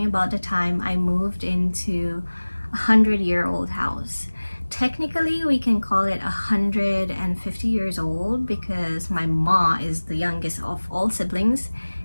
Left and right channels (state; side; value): inverted; both; correlation -1.00